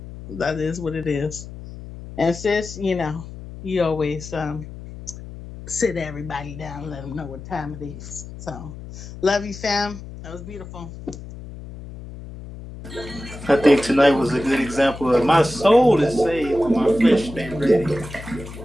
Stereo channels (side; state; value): left; noise; hum, 13 dB below the sound